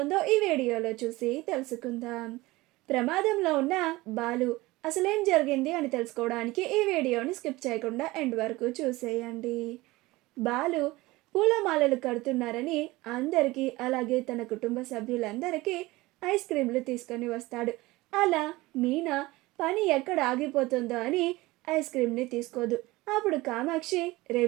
ఈ వీడియోలో చూసి తెలుసుకుందాం. ప్రమాదంలో ఉన్న బాలు అసలేం జరిగింది అని తెలుసుకోవడానికి ఈ వీడియోని స్కిప్ చేయకుండా ఎండ్ వరకు చూసేయండి. బాలు పూలమాలలు కడుతున్నారని అందరికీ, అలాగే తన కుటుంబ సభ్యులందరికీ ఐస్ క్రీంలు తీసుకొని వస్తాడు. అలా మీనా పని ఎక్కడ ఆగిపోతుందో అని ఐస్ క్రీమ్ని తీసుకోదు. అప్పుడు కామాక్షి, రే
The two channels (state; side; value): quieter; left; 20.2 dB